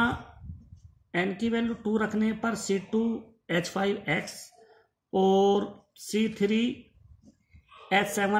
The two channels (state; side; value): identical; both; correlation 1.00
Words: n की वैल्यू 2 रखने पर C2H5X और